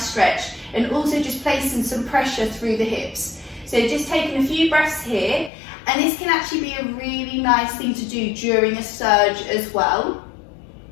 stretch, and also just placing some pressure through the hips. So just taking a few breaths here, and this can actually be a really nice thing to do during a surge as well.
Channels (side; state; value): right; drops out; at 5.5 s